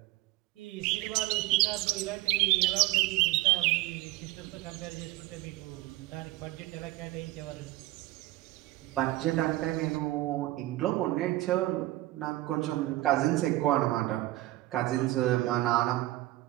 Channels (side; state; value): left; quieter; 17.7 dB